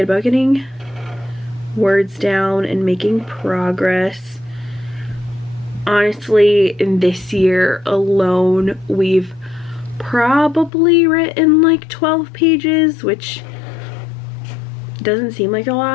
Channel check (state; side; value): drops out; right; at 10.7 s